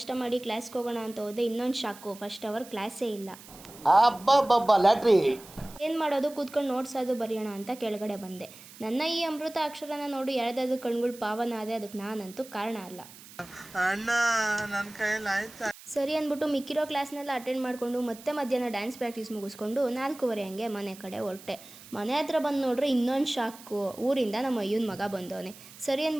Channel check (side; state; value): right; noise; hiss, 19 dB below the sound